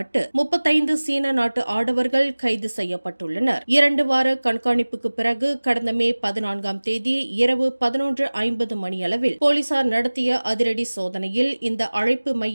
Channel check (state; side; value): inverted; both; correlation -1.00